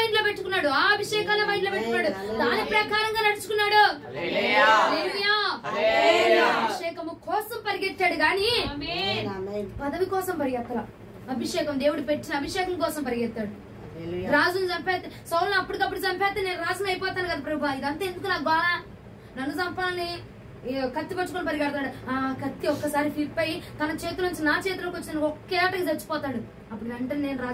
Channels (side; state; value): both; identical; correlation 1.00